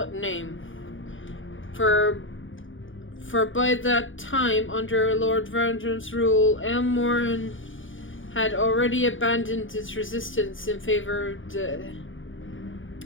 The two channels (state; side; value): late; right; 0.57 ms